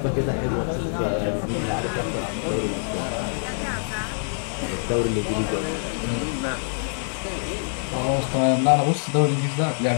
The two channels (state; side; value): silent; right; 60 dB below the other